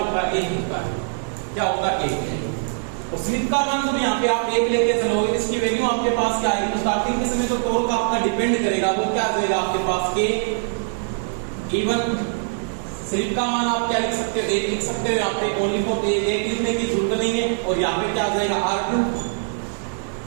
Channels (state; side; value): silent; left; digital silence